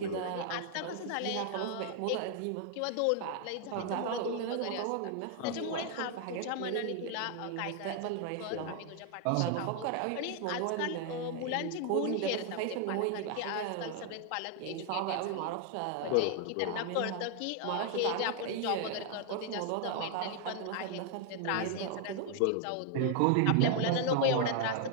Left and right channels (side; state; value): both; different; correlation 0.00